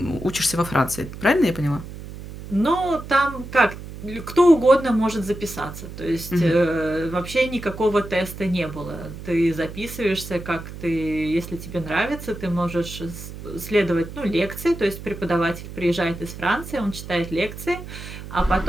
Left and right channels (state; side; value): noise; right; hum, 12 dB below the sound